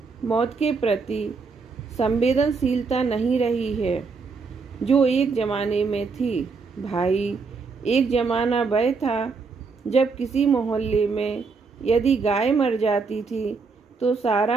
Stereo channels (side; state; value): left; quieter; 4.7 dB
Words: मौत के प्रति संवेदनशीलता नहीं रही है जो एक ज़माने में थी। भाई, एक ज़माना वह था जब किसी मोहल्ले में यदि गाय मर जाती थी तो